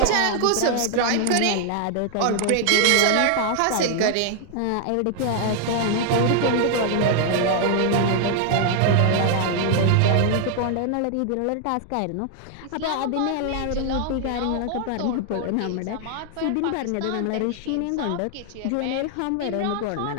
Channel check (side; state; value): both; different; correlation 0.00